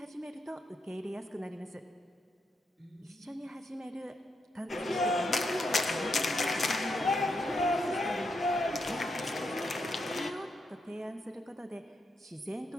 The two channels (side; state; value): both; normal; correlation 0.82